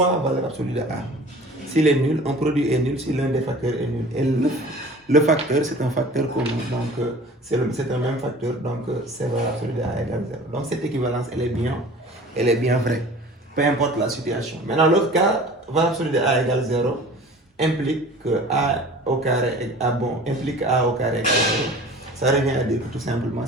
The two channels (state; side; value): normal; both; correlation 0.43